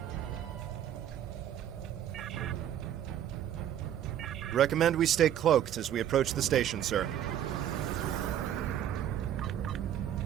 Recommend we stay cloaked as we approach the station, sir.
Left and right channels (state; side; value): quieter; left; 10.7 dB